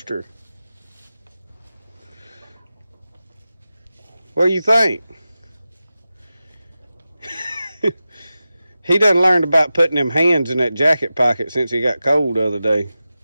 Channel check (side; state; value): both; inverted; correlation -0.93